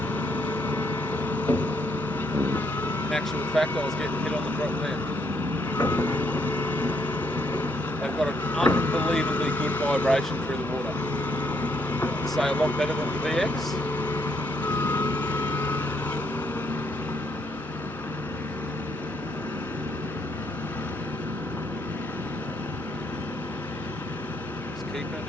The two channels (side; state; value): both; normal; correlation 0.73